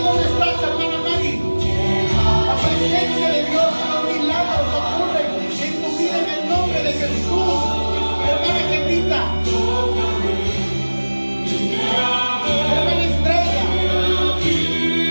donde estás, hermana Mari. La presencia de Dios, los milagros ocurren en tu vida en el nombre de Jesús. Hermana Gemita. Hermana Estrella.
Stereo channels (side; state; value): both; inverted; correlation -1.00